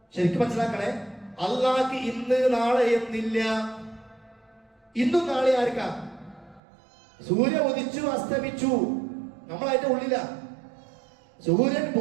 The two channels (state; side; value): drops out; left; at 6.6 s